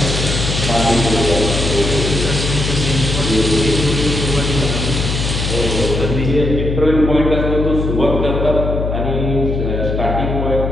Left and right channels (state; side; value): noise; left; hum, 2 dB below the sound